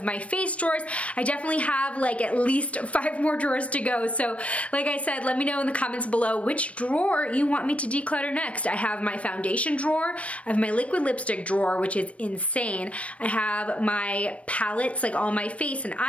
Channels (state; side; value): late; right; 0.064 ms